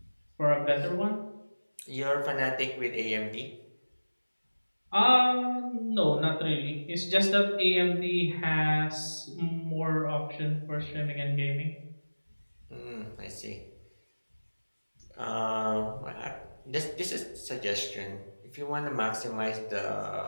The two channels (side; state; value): both; inverted; correlation -1.00